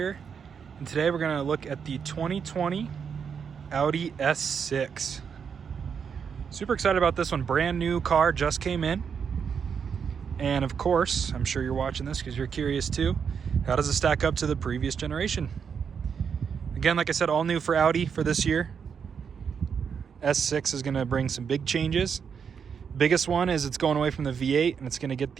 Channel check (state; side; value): quieter; left; 6.8 dB